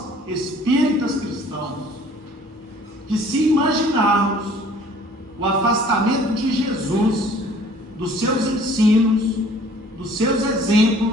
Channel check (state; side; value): normal; both; correlation 0.53